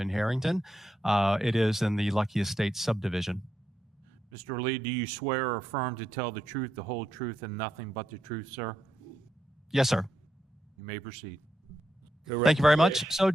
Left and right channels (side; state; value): both; normal; correlation 0.82